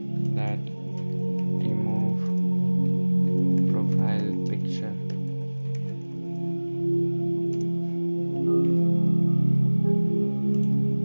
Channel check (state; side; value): inverted; both; correlation -1.00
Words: that remove profile picture.